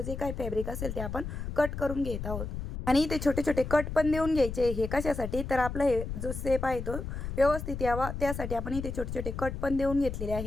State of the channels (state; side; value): noise; left; rumble, 6 dB below the sound